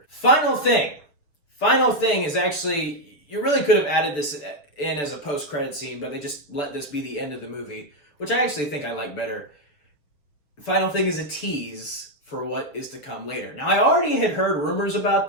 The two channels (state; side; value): late; right; 6.8 ms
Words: Final thing is actually, you really could have added this in as a post-credit scene, but they just let this be the end of the movie, which I actually think I like better. Final thing is a tease for what is to come later. Now, I already had heard rumors